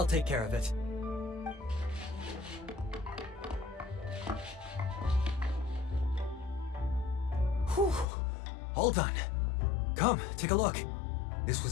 take care of it. Whew. All done. Come, take a look. This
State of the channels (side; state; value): right; drops out; at 8.1 s